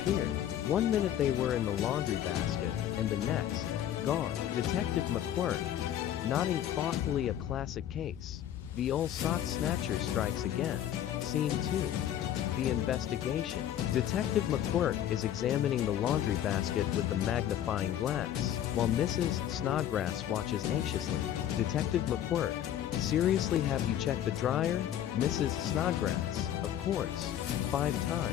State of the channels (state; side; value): quieter; right; 10.9 dB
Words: 1 minute they were in the laundry basket, and the next, gone. Detective McQuirk, nodding thoughtfully, a classic case. The old sock snatcher strikes again. Scene 2. The investigation. Detective McQuirk is examining the laundry basket with the magnifying glass, while Mrs. Snodgrass watches anxiously. Detective McQuirk, seriously, have you checked the dryer? Mrs. Snodgrass, of course. 5